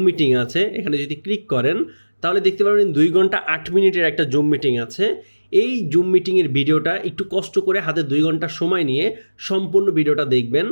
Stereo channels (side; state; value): both; inverted; correlation -1.00